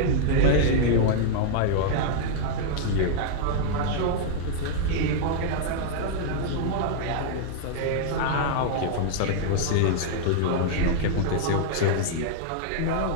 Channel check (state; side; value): different; both; correlation -0.01